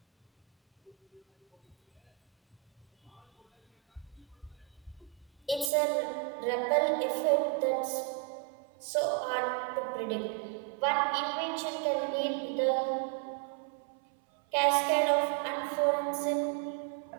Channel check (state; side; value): drops out; left; at 5.7 s